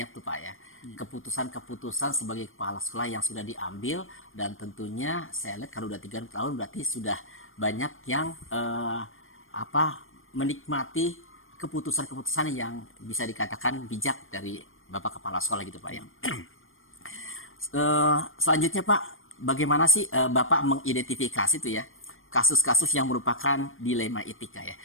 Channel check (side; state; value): right; late; 0.59 ms